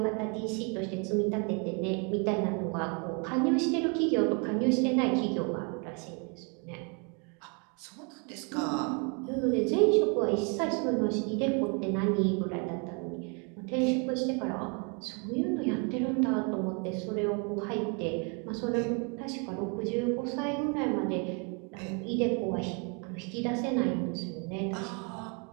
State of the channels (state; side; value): quieter; left; 35.3 dB